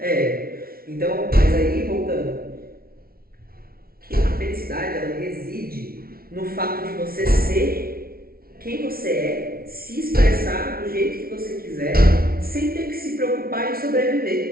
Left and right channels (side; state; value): left; late; 0.44 ms